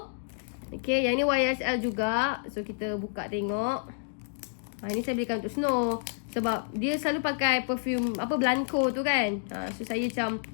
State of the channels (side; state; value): right; silent; digital silence